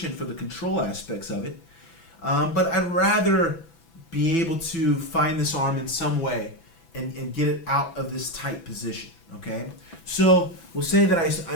for the control aspects of it. But I'd rather be able to find this arm in some way and get it out of this tight position, okay? So we'll say that I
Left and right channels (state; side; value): late; right; 6.0 ms